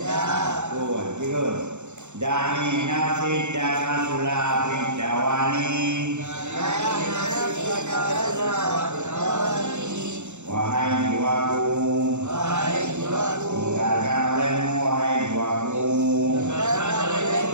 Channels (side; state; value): left; late; 0.83 ms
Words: Da'i nafidaka sulah fidawani wahai jiwaku, tinggalkan olehmu wahai jiwaku,